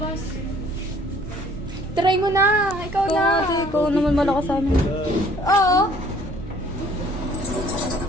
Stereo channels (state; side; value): normal; both; correlation 0.57